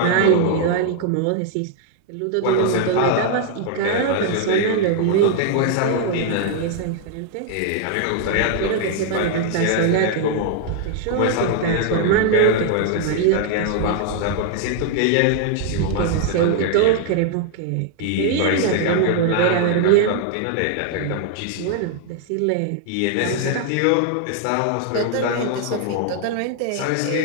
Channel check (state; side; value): different; both; correlation 0.00